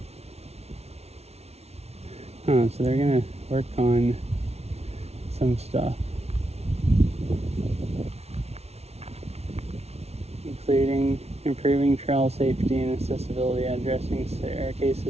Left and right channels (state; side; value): late; left; 0.31 ms